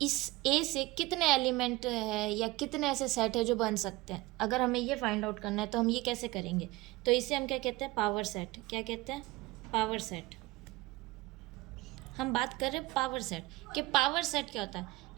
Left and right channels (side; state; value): left; quieter; 20.1 dB